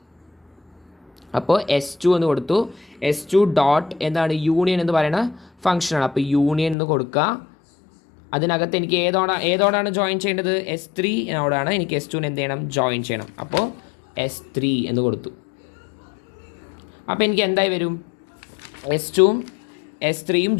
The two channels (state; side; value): drops out; right; at 6.8 s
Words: അപ്പോൾ S2 എന്ന് കൊടുത്തു. S2 ഡോട്ട് എന്താണ്, യൂണിയൻ എന്ന് പറയുന്ന ഫംഗ്ഷനാണ്. അപ്പോൾ യൂണിയൻ എന്ന് കൊടുക്കുക. അതിനകത്ത് എനിക്ക് ഏതോടാണ് ജോയിൻ ചെയ്യേണ്ടത്, S3നോടാണ് എനിക്ക് S2നെ എന്ത് ചെയ്യണം, ജോയിൻ ചെയ്യണം. അപ്പോൾ S3 എന്ന് കൊടുത്തു. അപ്പോൾ എനിക്ക് എന്തായി വരും, S2ഉം S3യും